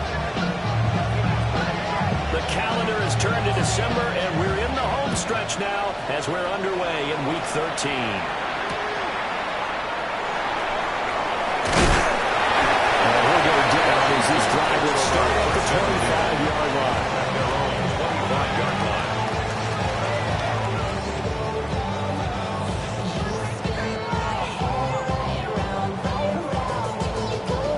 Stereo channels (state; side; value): identical; both; correlation 1.00